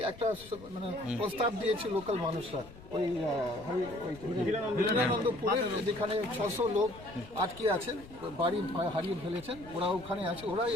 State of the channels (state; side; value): noise; left; rumble, 18 dB below the sound